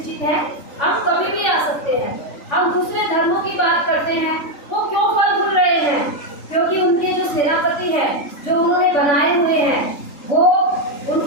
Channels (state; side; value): late; right; 3.5 ms